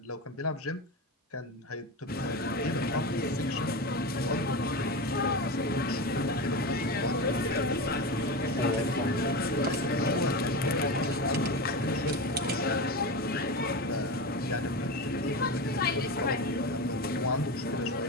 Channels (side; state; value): both; normal; correlation 0.22